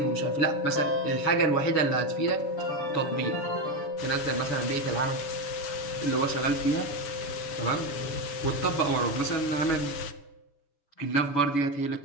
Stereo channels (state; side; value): late; right; 7.0 ms